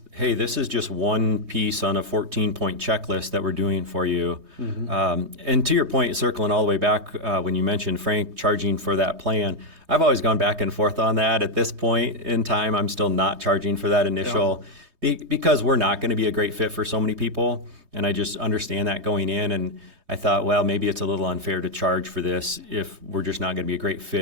hey, this is just one piece on a 14-point checklist that we're doing for you. And to your point, circling all the way back when you mentioned Frank charging for that plan, I've always gone back and forth on that. At this point in time, I'm still not charging for that initial because we're not going to be a great fit for so many people. And I just understand that going in. And I thought, well, maybe it's a little unfair to charge for this if we're just not going to be a great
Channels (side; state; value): left; late; 3.2 ms